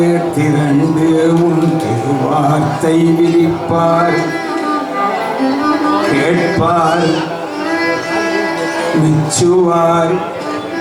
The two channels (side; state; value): both; identical; correlation 1.00